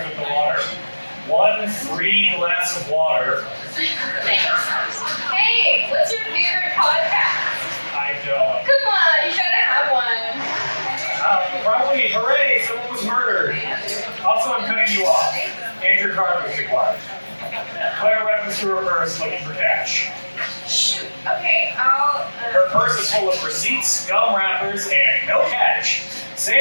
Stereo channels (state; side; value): inverted; both; correlation -1.00